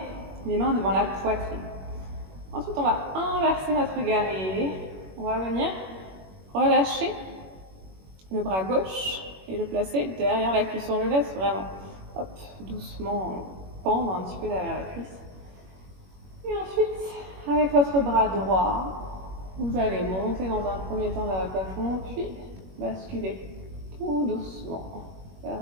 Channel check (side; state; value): left; late; 21 ms